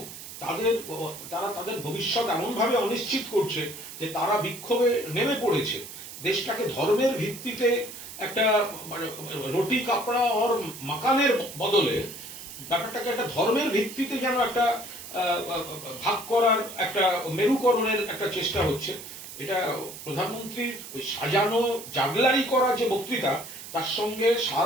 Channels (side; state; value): right; noise; hiss, 12 dB below the sound